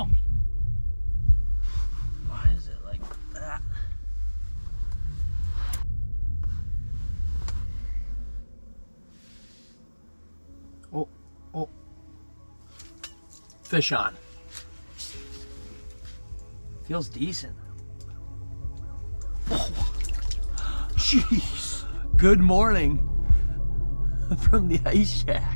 Why is it like that? Oh, oh. Fish on. Feels decent. Oh, jeez. Good morning from the ice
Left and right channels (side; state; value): both; inverted; correlation -1.00